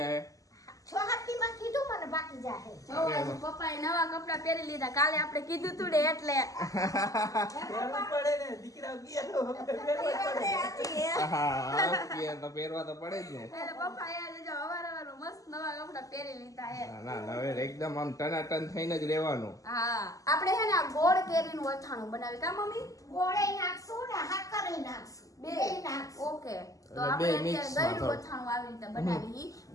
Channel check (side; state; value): right; late; 0.16 ms